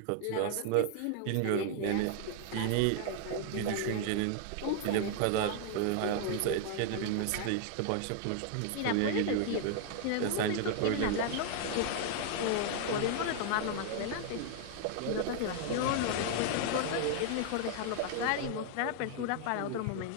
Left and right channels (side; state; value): both; different; correlation 0.00